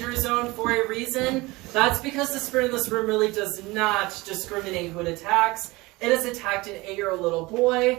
zone for a reason. That's because the spirit in this room really does not discriminate who it attacks. It has attacked an 8-year-old little boy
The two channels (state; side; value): quieter; left; 22.0 dB